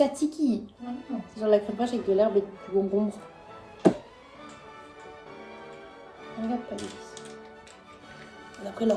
C'est genre la crème fraîche avec de l'herbe et du concombre. Regarde pas les vis. On a pris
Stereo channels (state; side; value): identical; both; correlation 1.00